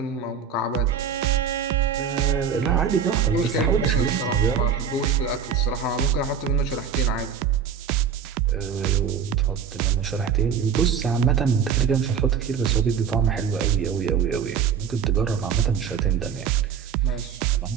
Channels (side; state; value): left; quieter; 7.2 dB